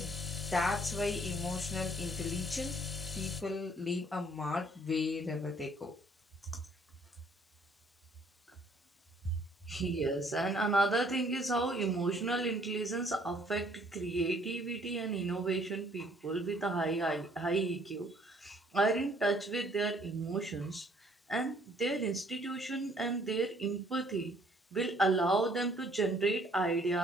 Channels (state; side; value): normal; both; correlation 0.61